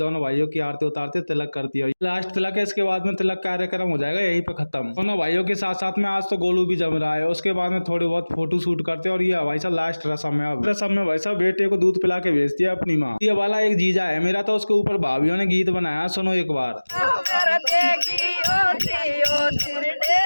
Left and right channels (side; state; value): both; inverted; correlation -1.00